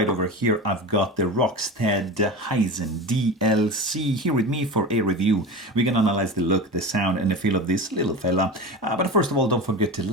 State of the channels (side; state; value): both; normal; correlation 0.29